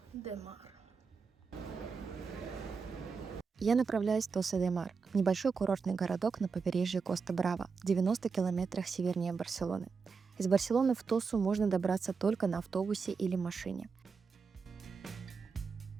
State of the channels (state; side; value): quieter; left; 5.2 dB